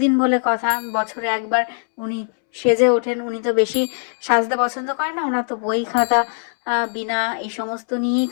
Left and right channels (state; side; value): silent; right; 65 dB below the other